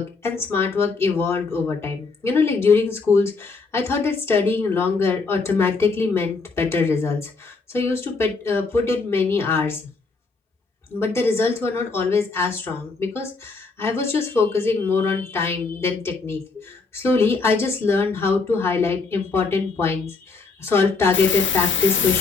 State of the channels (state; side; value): quieter; right; 4.2 dB